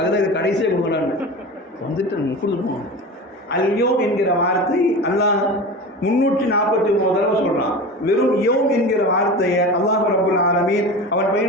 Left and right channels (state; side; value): normal; both; correlation 0.30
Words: இது கடைசியாக கொடுக்கலான்னு வந்துட்டு கொடுத்துருப்போம். அல்யோ என்கிற வார்த்தை அல்லாஹ் 349 தடவை சொல்கிறான். வெறும் யோம் என்கிற வார்த்தையை அல்லாஹ் ரப்பல் ஆலமீன் அவன்